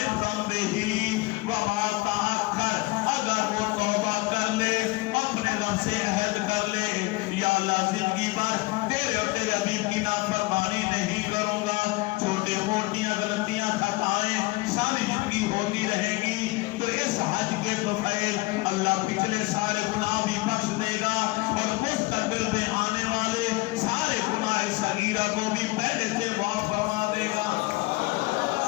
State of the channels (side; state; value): right; quieter; 21.9 dB